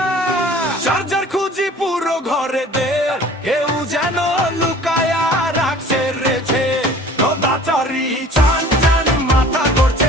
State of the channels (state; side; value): normal; both; correlation 0.47